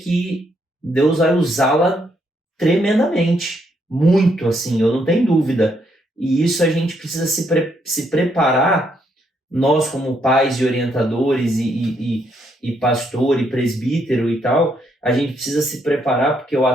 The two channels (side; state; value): both; normal; correlation 0.74